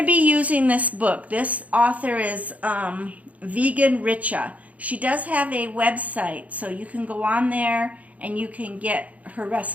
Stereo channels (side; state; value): left; late; 0.070 ms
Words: be using this book. This author is Vegan Richa. She does have a website, so you can go on there and you can get her